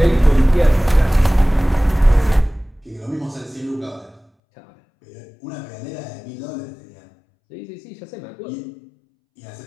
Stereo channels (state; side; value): drops out; right; at 4.2 s